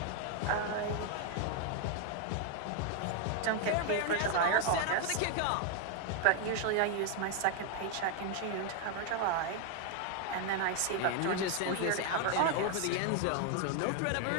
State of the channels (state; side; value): different; both; correlation 0.00